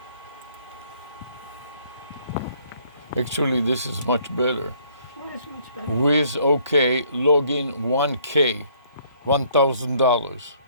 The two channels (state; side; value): inverted; both; correlation -0.64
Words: Actually, this is much better. What is much better? With OK, login 1K, $1,000.